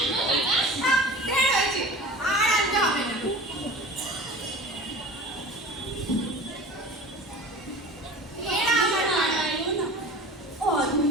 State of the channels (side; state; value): both; normal; correlation 0.38